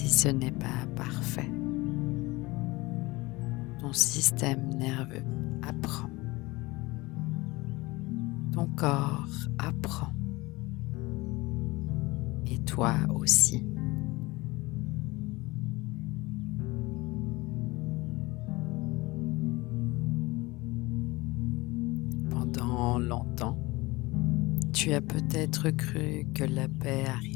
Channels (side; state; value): right; quieter; 22.0 dB